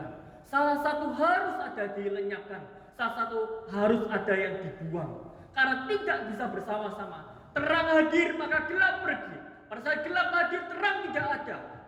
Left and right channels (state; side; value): identical; both; correlation 1.00